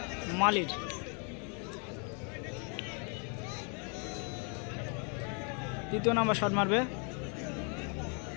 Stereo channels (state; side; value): quieter; right; 37.8 dB